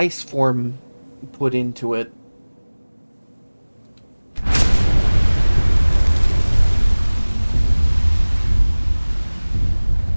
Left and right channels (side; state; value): both; inverted; correlation -1.00